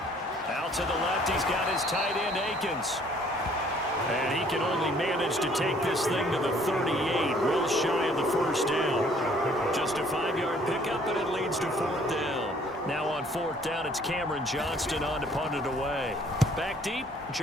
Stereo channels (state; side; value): normal; both; correlation 0.59